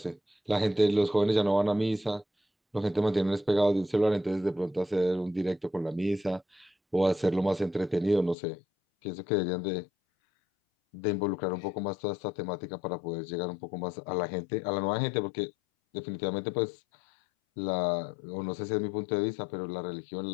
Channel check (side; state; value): right; drops out; at 8.3 s